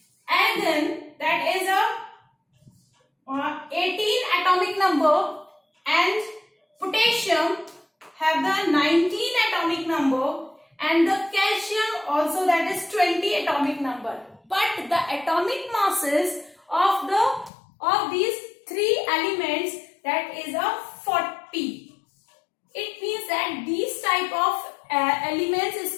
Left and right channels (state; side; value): drops out; right; at 17.5 s